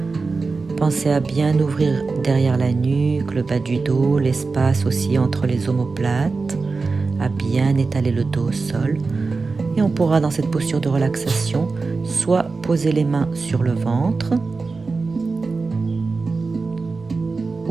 Pensez à bien ouvrir derrière la nuque, le bas du dos, l'espace aussi entre les omoplates, à bien étaler le dos au sol. Et on pourra dans cette posture de relaxation soit poser les mains sur le ventre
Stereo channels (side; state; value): left; quieter; 4.1 dB